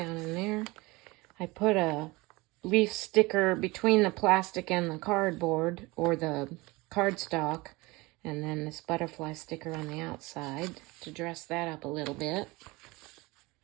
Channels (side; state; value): left; quieter; 22.8 dB